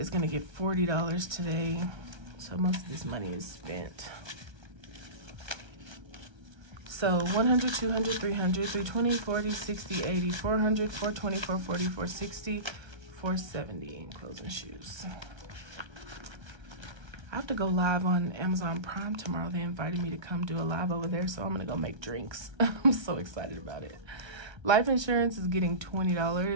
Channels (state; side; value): late; left; 1.3 ms